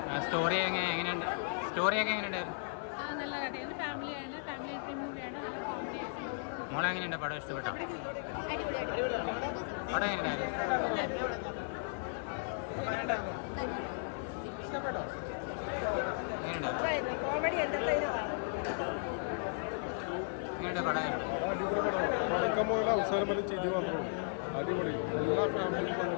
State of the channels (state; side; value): silent; right; 54 dB below the other